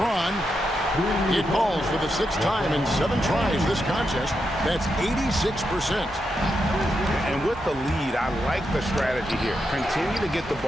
It falls for the 6th time in 7 tries this contest. That's 86%. And with the lead, I like the strategy here. Continue to get the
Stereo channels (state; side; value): normal; both; correlation 0.85